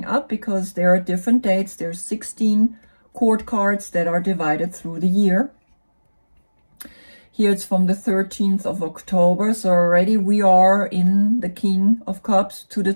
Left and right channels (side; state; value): both; inverted; correlation -1.00